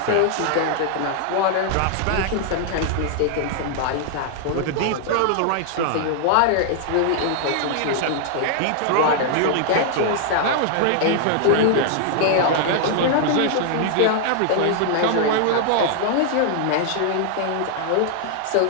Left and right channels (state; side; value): different; both; correlation -0.01